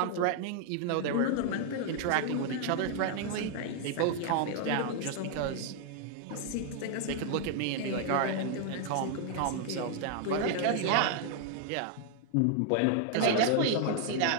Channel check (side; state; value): both; different; correlation 0.00